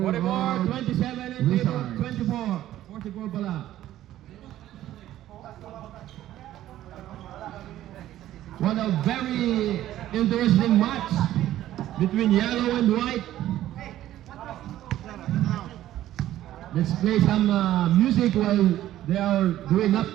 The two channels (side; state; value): left; quieter; 13.4 dB